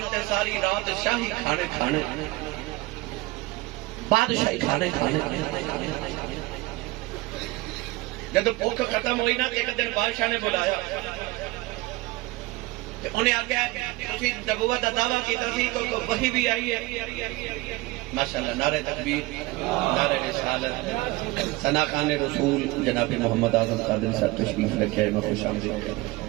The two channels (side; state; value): left; quieter; 21.1 dB